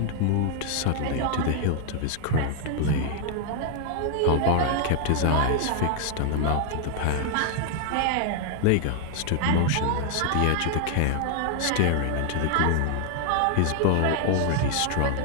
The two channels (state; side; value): different; both; correlation 0.00